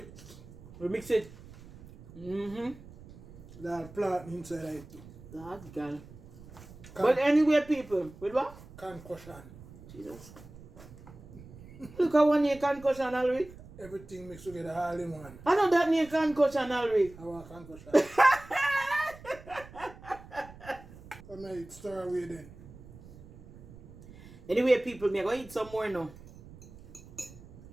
We mix it. That plant inside it too. That girl. But anyway people, with what? Concussion. Jesus. Look at one year concussion already. Everything mixed together all in one. I know that near concussion already. I want concussion. So may stir away then. Anyway people, me go eat some more now.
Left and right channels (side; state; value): right; noise; rumble, 18 dB below the sound